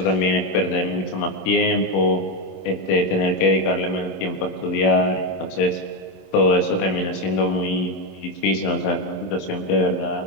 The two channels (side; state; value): right; late; 27 ms